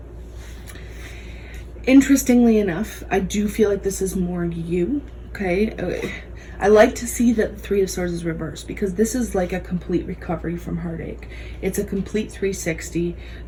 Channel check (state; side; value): identical; both; correlation 1.00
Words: interestingly enough, I do feel like this is more you. Okay, I like to see that the Three of Swords is reversed, because this is like a complete recovery from heartache. It's a complete 360